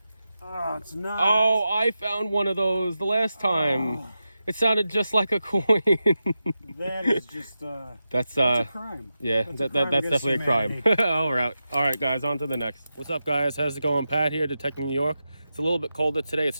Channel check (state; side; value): inverted; both; correlation -0.90